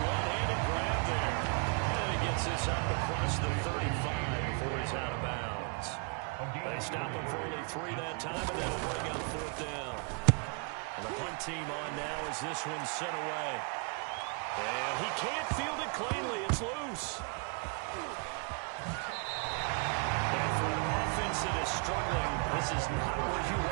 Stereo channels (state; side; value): quieter; left; 35.4 dB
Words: one-handed grab there. And he gets this up across the 35 before he's out of bounds. They stop him for only 3 that time, and that'll bring up 4th down. And the punt team on now as this one's sent away. And he can't field it cleanly. It's loose. And for an offense that is struggling, this is not where you